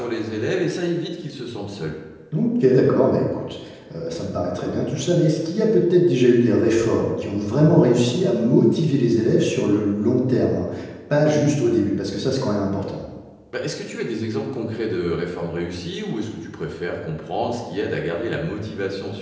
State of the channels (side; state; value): both; identical; correlation 1.00